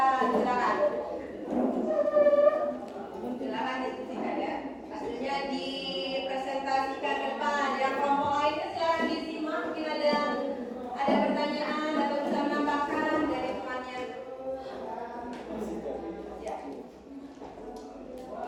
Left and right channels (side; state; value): both; identical; correlation 1.00